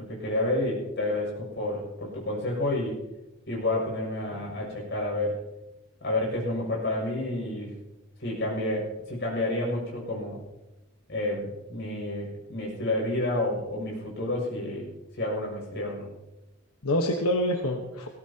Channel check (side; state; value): both; normal; correlation 0.02